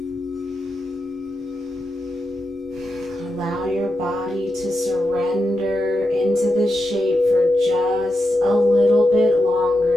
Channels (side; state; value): both; normal; correlation 0.87